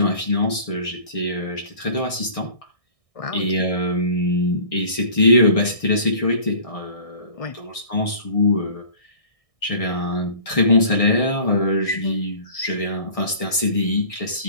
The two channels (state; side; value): late; right; 1.6 ms